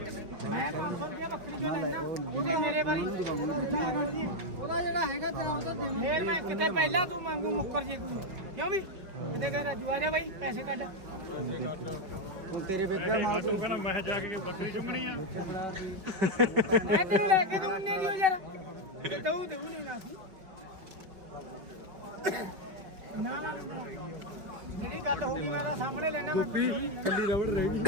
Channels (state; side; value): late; left; 5.3 ms